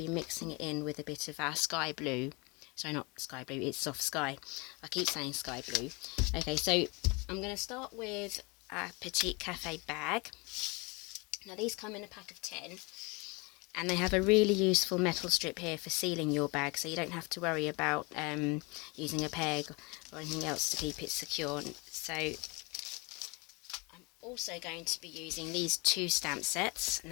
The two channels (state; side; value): quieter; right; 28.0 dB